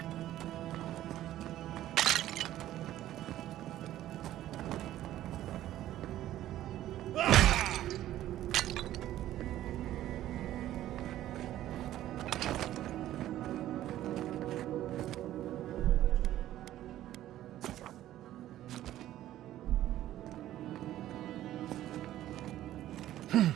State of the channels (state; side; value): quieter; left; 13.4 dB